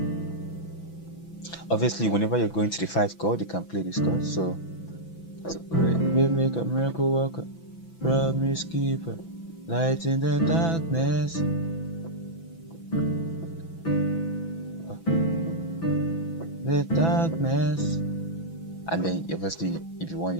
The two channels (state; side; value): late; right; 6.0 ms